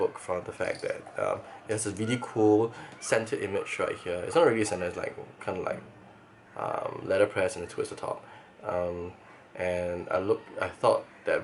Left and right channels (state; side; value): identical; both; correlation 1.00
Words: from the fact that it has a really cool centered image right here. It's not really centered, it's like kind of like letterpress and a twist at the top. And I thought that